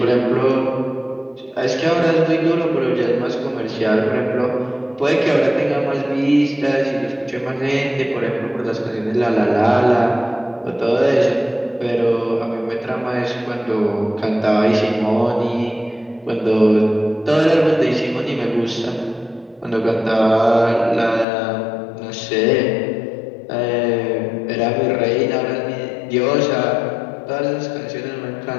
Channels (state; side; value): drops out; right; at 21.2 s